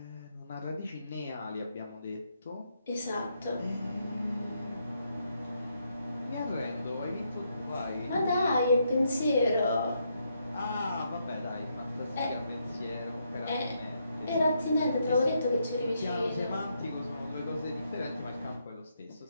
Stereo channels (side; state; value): both; inverted; correlation -0.78